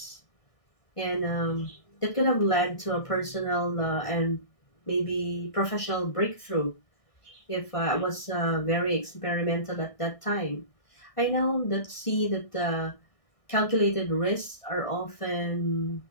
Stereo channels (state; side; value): late; right; 1.6 ms